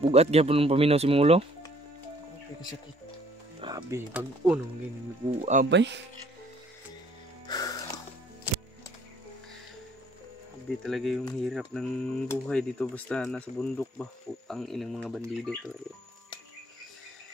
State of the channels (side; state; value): both; normal; correlation 0.60